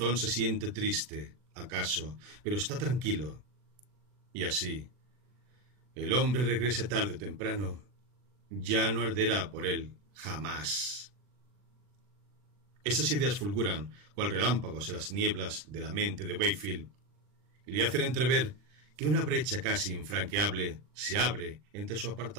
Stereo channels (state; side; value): late; left; 40 ms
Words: se siente triste, acaso, pero está tranquilo. Y así, el hombre regrese tarde o temprano, ya no arderá por él jamás. Esas ideas fulguran cual relámpagos en las nieblas de la mente de Wakefield y le hacen entrever que una brecha casi infranqueable se abre entre su